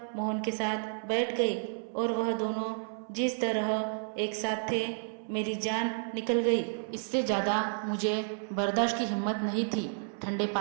मोहन के साथ बैठ गई और वह दोनों जिस तरह एक साथ थे, मेरी जान निकल गई। इससे ज़्यादा मुझे बर्दाश्त की हिम्मत नहीं थी। ठंडे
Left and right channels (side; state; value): left; silent; 57 dB below the other